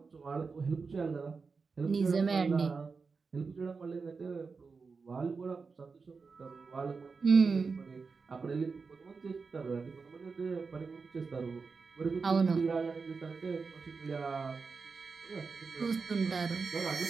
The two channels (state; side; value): quieter; left; 4.8 dB